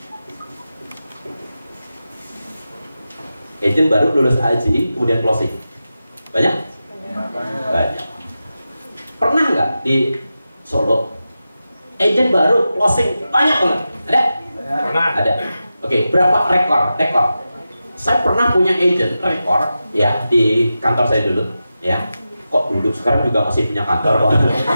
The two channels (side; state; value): both; inverted; correlation -0.92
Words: Agent baru lulus AAJI kemudian closing. Banyak? Banyak. Pernah nggak di Solo agent baru closing banyak banget? Ada? Pernah. Ada. Oke, berapa rekor? Saya pernah punya agent rekor ya di kantor saya dulu ya. Kok dulu, sekarang juga masih punya kantor kok.